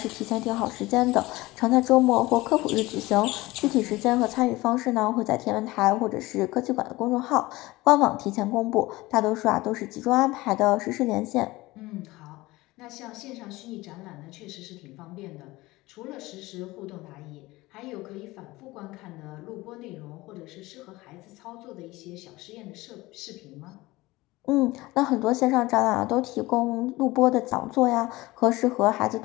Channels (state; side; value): quieter; right; 19.9 dB